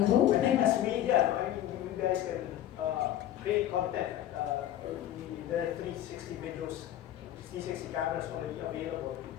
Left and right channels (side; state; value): right; quieter; 12.1 dB